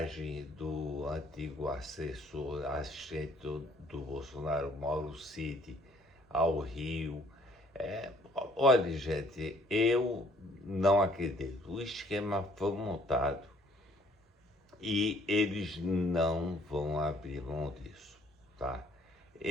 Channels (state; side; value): normal; both; correlation 0.61